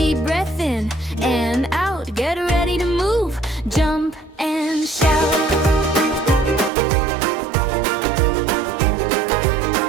breath in and out. Get ready to move, jump and shout.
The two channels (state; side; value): drops out; left; at 6.7 s